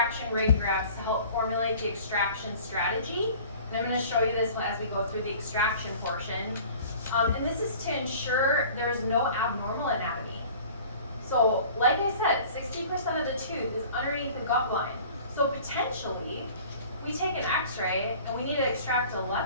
radiographs to help formulate the extraction strategy. And I'm going to show you this as we go through the extraction portion. And this is to ensure there is no abnormal anatomy. So, like I said, 60% of the tooth is underneath the gut line. So potentially, we take an x-ray and we need to extract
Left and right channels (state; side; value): inverted; both; correlation -0.46